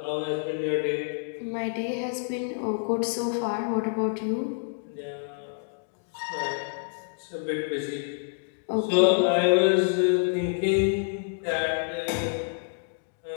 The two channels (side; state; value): right; silent; digital silence